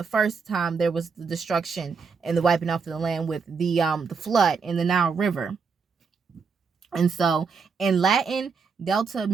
first time there was the destruction and the wiping off of the land with the flood in the Nile River. And so in Latin, Delta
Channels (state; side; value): quieter; left; 5.3 dB